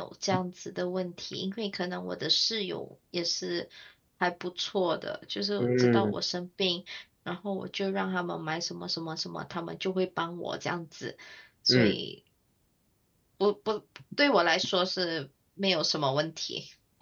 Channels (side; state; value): both; identical; correlation 1.00